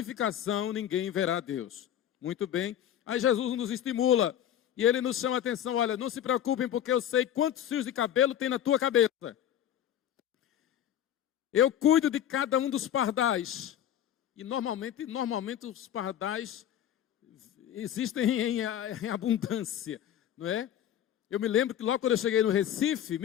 ninguém verá Deus. Muito bem. Aí Jesus nos estimula. E ele nos chama a atenção, olha, não se preocupem porque eu sei quantos fios de cabelo tem na tua cabeça. Eu cuido de cada um dos pardais. E normalmente os pardais existem em abundância, não é? Eu me lembro que logo quando eu cheguei no Recife, em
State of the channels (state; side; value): quieter; right; 10.6 dB